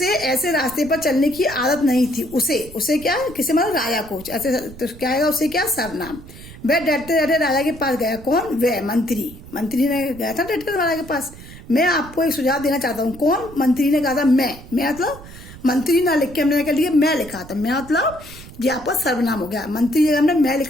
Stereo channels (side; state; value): right; noise; rumble, 17 dB below the sound